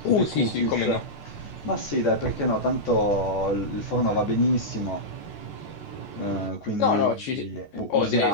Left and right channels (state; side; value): late; right; 14 ms